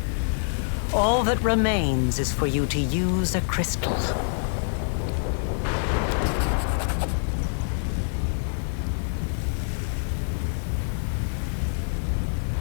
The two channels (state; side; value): silent; right; 61 dB below the other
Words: All that remains is for you to use a crystal.